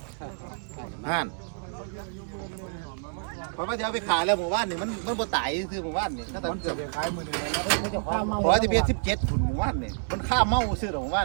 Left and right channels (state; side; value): silent; left; digital silence